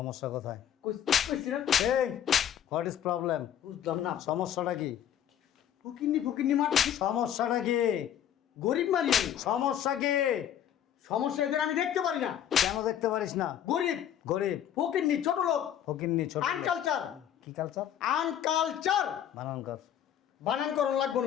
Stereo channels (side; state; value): right; quieter; 10.0 dB